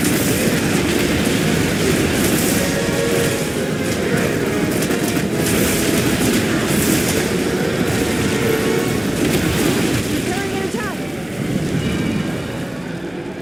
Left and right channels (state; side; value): noise; left; hum, 28 dB below the sound